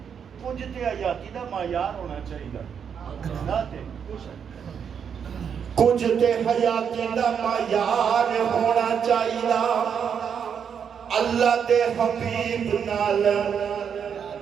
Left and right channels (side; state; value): left; quieter; 7.4 dB